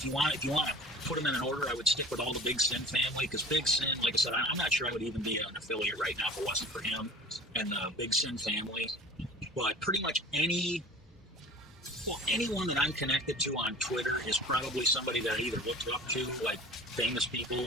you want to put them in an order, I would stick with all the Big Syn family, because Big Syn, like I said, I'm not sure I would even be an affiliate right now if it wasn't for him and the Big Syn family. But pretty much anyone that I'm connected to on Twitter is probably somebody that I either looked up to, like famous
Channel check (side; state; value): both; normal; correlation 0.41